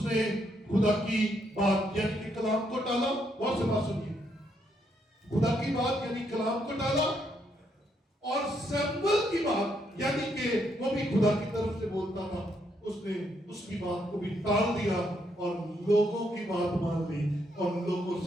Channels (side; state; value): both; normal; correlation 0.75